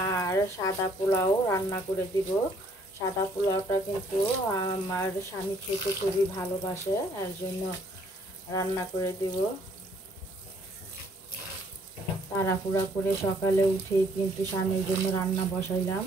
আর সাদা পোলাও রান্না করে দিব। সাদা পোলাওটা কিন্তু আমার স্বামী খেতে খুবই ভালোবাসে, এর জন্য রান্না করে দিব। তাড়াহুড়া করে সকালে উঠেই কিন্তু স্বামীর জন্য রান্না বসাইলাম।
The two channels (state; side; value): normal; both; correlation 0.63